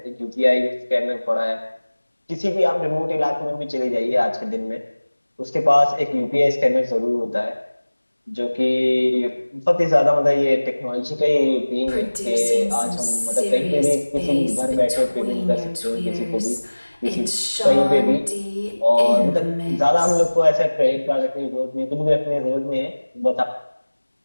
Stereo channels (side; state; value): both; inverted; correlation -1.00